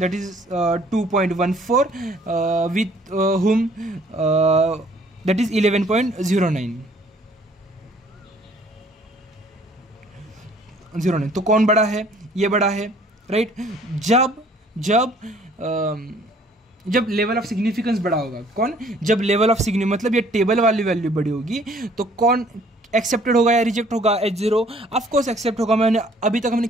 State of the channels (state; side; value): normal; both; correlation 0.58